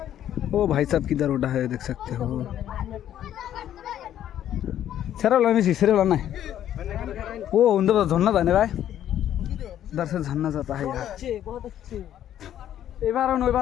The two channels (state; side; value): quieter; right; 11.1 dB